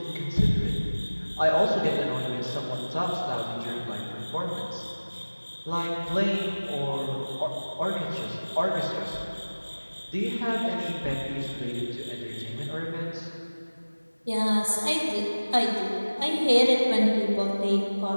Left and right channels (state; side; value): inverted; both; correlation -1.00